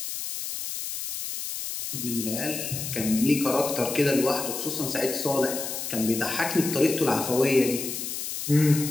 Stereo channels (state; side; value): noise; left; hiss, 5 dB below the sound